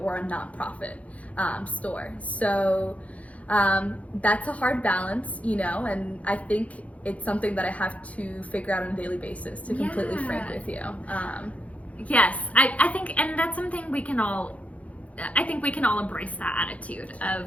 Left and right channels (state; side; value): late; right; 0.066 ms